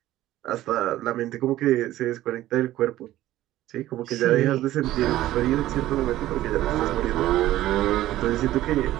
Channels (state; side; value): quieter; left; 14.7 dB